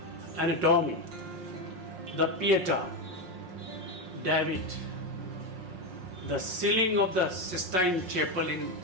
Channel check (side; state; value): left; late; 5.6 ms